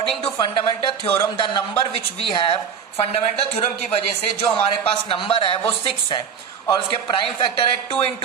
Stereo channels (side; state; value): left; quieter; 7.2 dB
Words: to fundamental theorem the number which we have, fundamental theorem की वजह से जो हमारे पास नंबर है वो 6 है और उसके प्राइम फैक्टर है 2